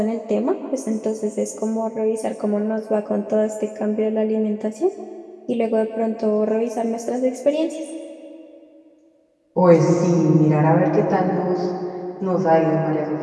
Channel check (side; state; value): both; identical; correlation 1.00